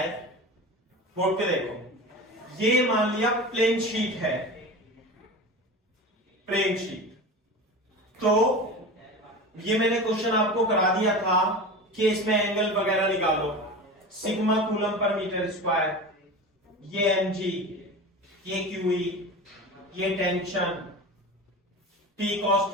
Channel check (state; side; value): normal; both; correlation 0.31